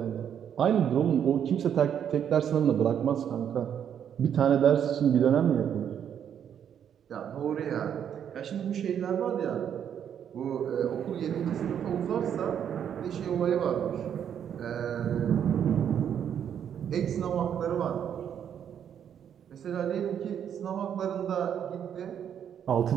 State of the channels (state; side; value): quieter; left; 8.9 dB